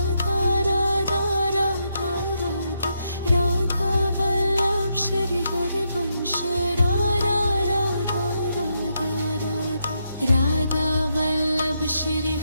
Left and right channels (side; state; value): both; inverted; correlation -0.80